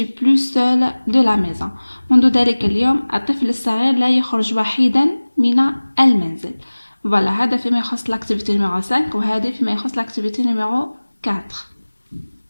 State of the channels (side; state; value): both; inverted; correlation -1.00